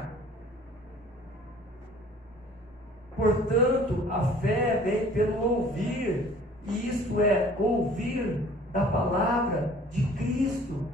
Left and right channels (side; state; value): both; normal; correlation 0.51